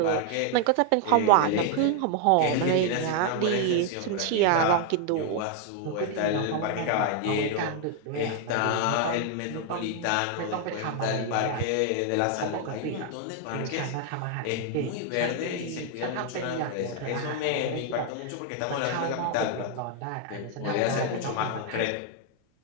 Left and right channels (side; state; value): both; different; correlation 0.00